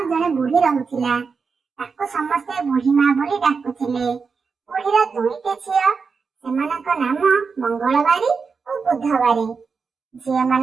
जने बुढ़ी रहुथिला। ताको समस्ते बुढ़ी माँ बोली डाकुथिले। बुढ़ीर दुईटे झियो, सेमानक नाम मंगलबारी और बुधबारी। झियो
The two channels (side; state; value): left; quieter; 5.2 dB